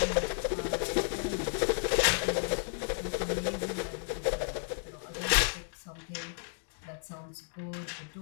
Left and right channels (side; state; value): right; silent; 56 dB below the other